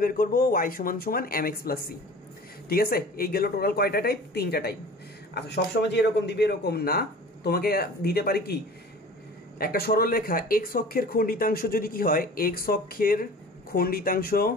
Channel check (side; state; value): both; normal; correlation 0.42